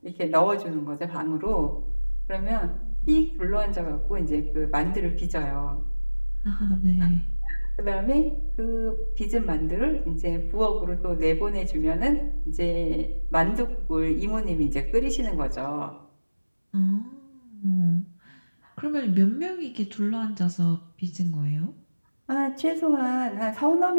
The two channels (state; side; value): inverted; both; correlation -1.00